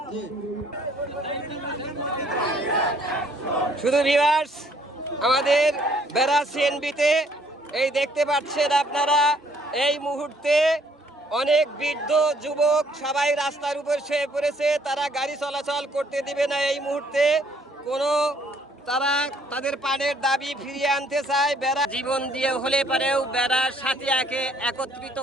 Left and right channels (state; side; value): normal; both; correlation 0.63